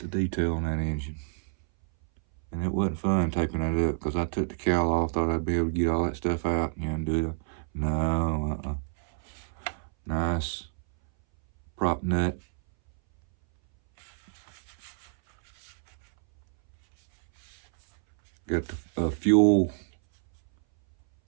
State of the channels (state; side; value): silent; left; 59 dB below the other